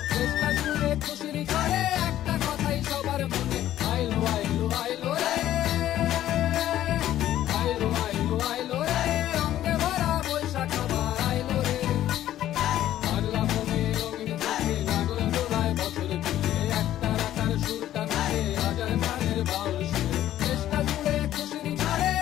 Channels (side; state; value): right; quieter; 12.7 dB